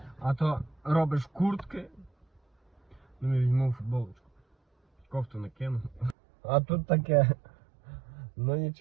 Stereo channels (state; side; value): drops out; left; at 6.2 s